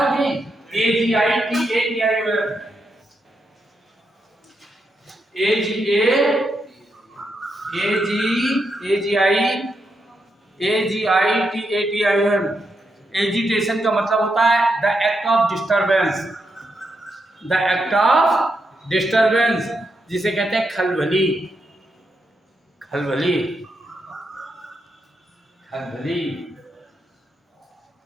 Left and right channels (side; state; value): both; normal; correlation 0.83